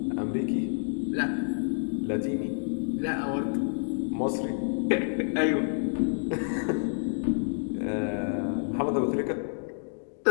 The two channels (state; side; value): silent; right; digital silence